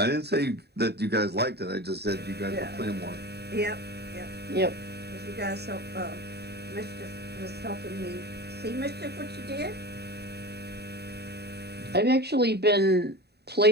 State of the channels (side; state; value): left; late; 0.48 ms